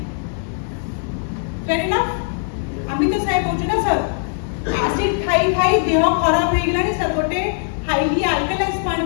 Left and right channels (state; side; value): silent; right; digital silence